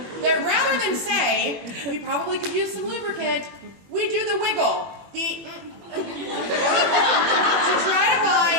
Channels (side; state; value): left; late; 21 ms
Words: that rather than say, we probably could use some lubricant, we do the wiggle, to try to